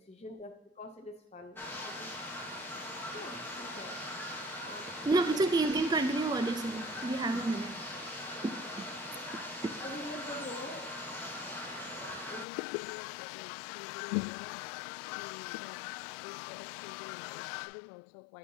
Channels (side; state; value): right; drops out; at 12.5 s